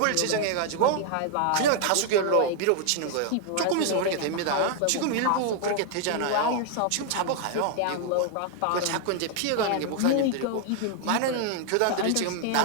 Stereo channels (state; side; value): different; both; correlation 0.00